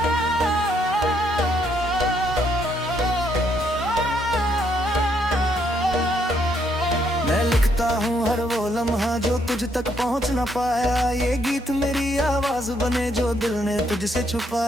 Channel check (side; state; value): both; normal; correlation 0.72